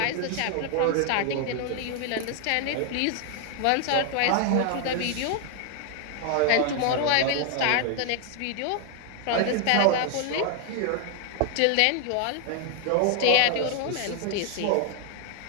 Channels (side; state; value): both; different; correlation 0.00